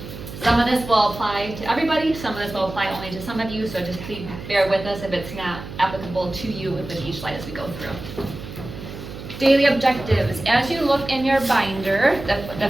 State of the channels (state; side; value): noise; right; hum, 11 dB below the sound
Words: Some of this will apply to everybody, some of this will apply only to some of you, so just please bear with us if it's not applicable to you with each slide as we go through. Daily objectives. As you look in your binder, the